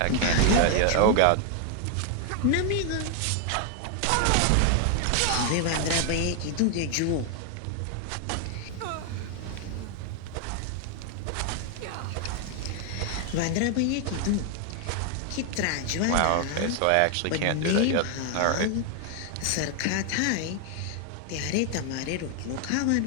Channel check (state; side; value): different; both; correlation 0.00